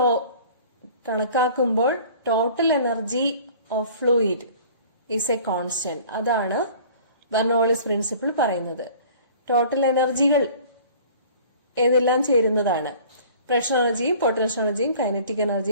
കണക്കാക്കുമ്പോൾ total energy of fluid is a constant. അതാണ് Bernoulli's principle പറയുന്നത്. Total എനർജികൾ ഏതെല്ലാം ചേരുന്നതാണ്? Pressure എനർജിയും potential എനർജിയും കൈനറ്റിക്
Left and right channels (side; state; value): both; inverted; correlation -0.48